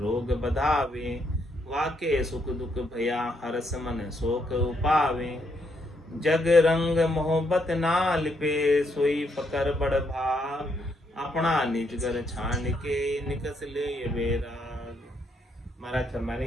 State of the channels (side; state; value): both; normal; correlation 0.75